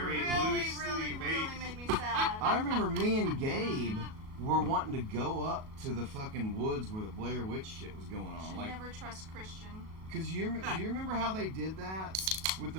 really, Loosely really based. made me sad. I remember me and Gabe were wanting to go up to the fucking woods where the Blair Witch shit was going on. Should Like, never trust Christian. cause do you remember how they did that with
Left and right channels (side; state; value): left; late; 37 ms